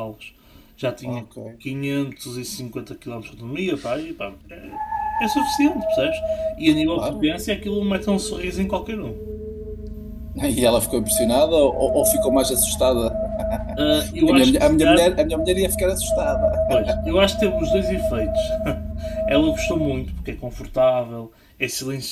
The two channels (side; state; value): both; identical; correlation 1.00